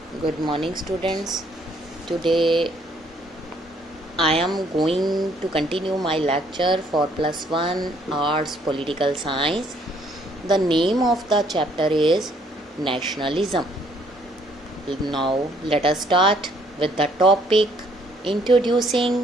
Good morning, students. Today I am going to continue my lecture for +1 Arts Political Science. The name of the chapter is Nationalism. Now let us start with the topic introducing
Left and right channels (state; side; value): normal; both; correlation 0.65